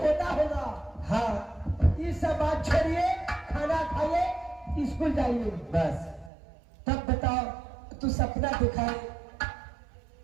होगा। हाँ ये सब बात छोड़िए, खाना खाइए, स्कूल जाइए बस। तब बताओ तू सपना दिखाए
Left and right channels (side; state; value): left; drops out; at 6.3 s